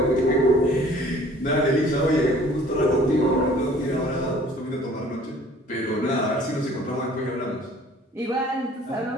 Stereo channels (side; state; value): both; normal; correlation 0.53